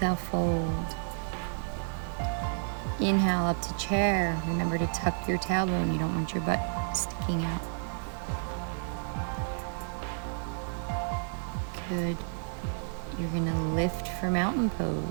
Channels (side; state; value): left; silent; digital silence